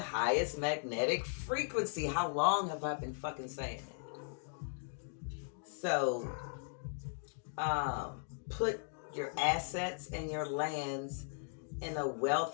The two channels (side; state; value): right; silent; digital silence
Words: magnetic frequency. How long have I been fucking saying that? So, put your assets and your lands in a